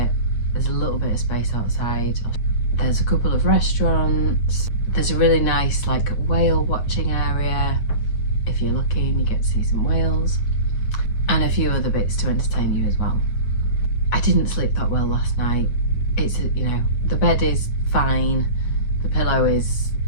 There's a little bit of space outside. There's a couple of restaurants. There's a really nice like whale watching area. If you're lucky and you get to see some whales, and a few other bits to entertain you as well. I didn't sleep that well last night. It's, you know, the bed is fine, the pillow is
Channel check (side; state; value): right; late; 8.7 ms